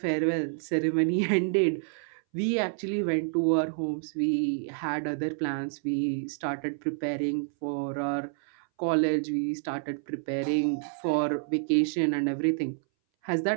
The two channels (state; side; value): silent; left; 59 dB below the other